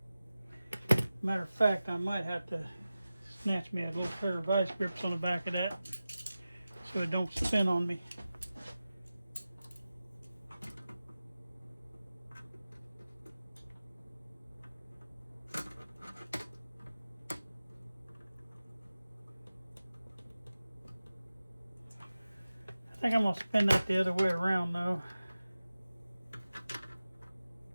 Matter of fact, I might have to snatch me a little pair of vice grips on the back of that so it don't spin on me. I think I'm going to spin that the other way around though.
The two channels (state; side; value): inverted; both; correlation -0.95